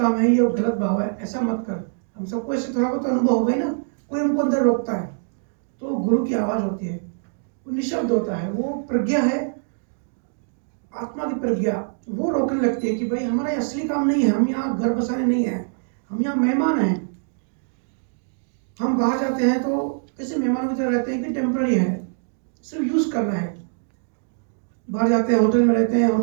है, ये गलत भाव है, ऐसा मत कर। हम सबको ऐसे थोड़ा बहुत अनुभव होगा ही ना, कोई हमको अंदर रोकता है, तो गुरु की आवाज होती है, वो निशब्द होता है, वो प्रज्ञा है, आत्मा की प्रज्ञा, वो रोकने लगती है कि भाई हमारा ये असली काम नहीं है, हम यहाँ घर बसाने नहीं है, हम यहाँ मेहमान हैं। हम बाहर जाते हैं तो कैसे मेहमानों की तरह रहते हैं कि टेम्पररी है, सिर्फ यूज करना है। बाहर जाते हैं, होटल में रहते हैं,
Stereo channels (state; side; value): silent; left; digital silence